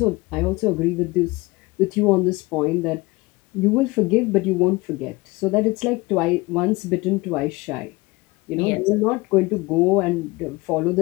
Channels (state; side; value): quieter; right; 23.0 dB